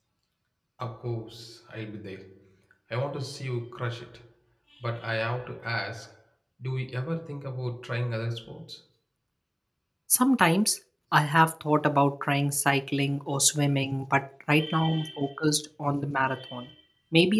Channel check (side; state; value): both; identical; correlation 1.00